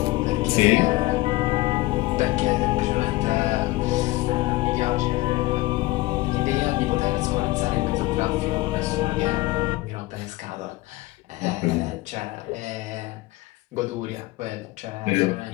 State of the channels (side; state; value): right; quieter; 19.6 dB